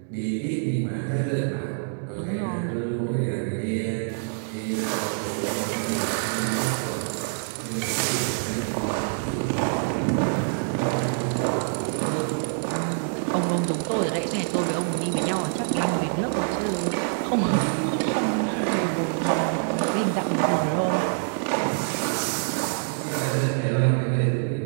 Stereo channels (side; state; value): left; silent; digital silence